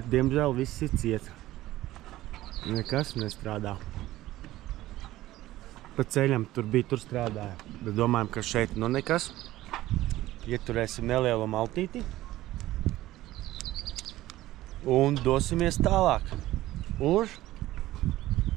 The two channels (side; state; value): left; quieter; 15.9 dB